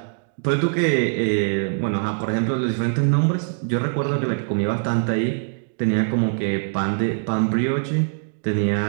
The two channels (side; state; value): left; silent; 64 dB below the other